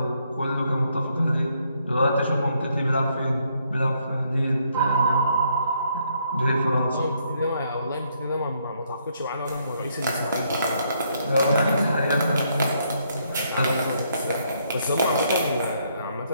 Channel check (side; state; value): both; inverted; correlation -0.72